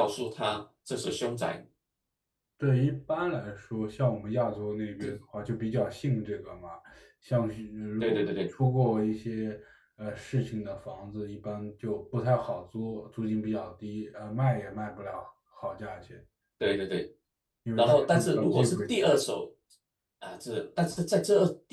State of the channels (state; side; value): identical; both; correlation 1.00